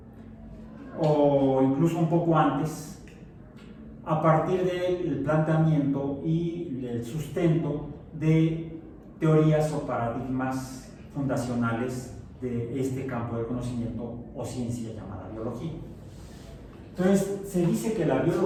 o incluso un poco antes, a partir del planteamiento y el sustento de teorías o paradigmas fundacionales de este campo de conocimiento o ciencia llamada biología. Entonces, se dice que la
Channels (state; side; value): identical; both; correlation 1.00